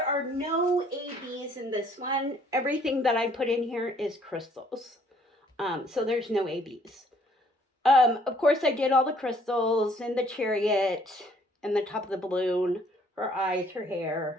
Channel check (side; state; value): both; normal; correlation 0.62